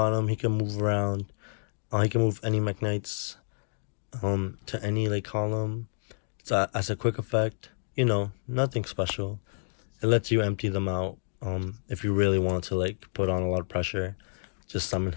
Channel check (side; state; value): right; silent; digital silence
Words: him. He can move around. He can move any Mekk to any like column. So as a quick effect, you know, nothing special. It lets you empty them out. If you really want to like put on a lot of pressure, just summon